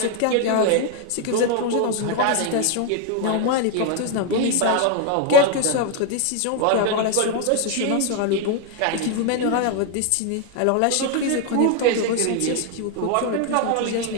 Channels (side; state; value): both; different; correlation 0.00